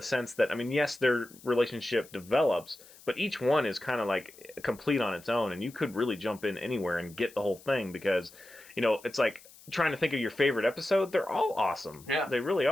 sense that, I mean, yes, their relationship develops, but each one is kind of like complete on its own, and you could really jump in anywhere and get the whole thing because, it's like trying to think of your favorite episode. They're all awesome. Yeah. They really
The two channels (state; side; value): noise; left; hiss, 22 dB below the sound